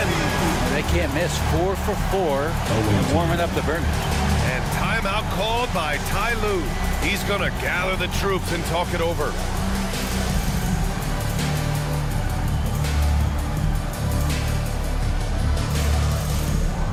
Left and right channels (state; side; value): identical; both; correlation 1.00